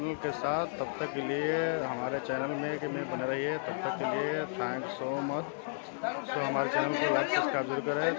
के साथ। तब तक के लिए हमारे चैनल में बने रहिए। तब तक के लिए थैंक्स सो मच। सो हमारे चैनल को लाइक सब्सक्राइब जरूर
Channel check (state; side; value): silent; right; 56 dB below the other